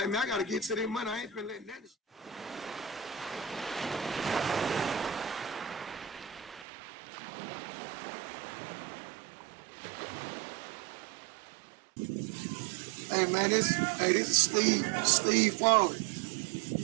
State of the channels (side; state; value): left; drops out; at 6.7 s